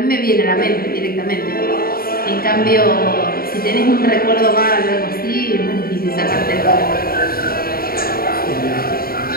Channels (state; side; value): late; right; 0.43 ms